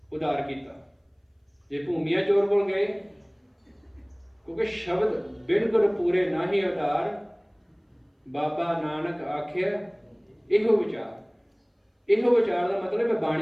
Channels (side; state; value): both; identical; correlation 1.00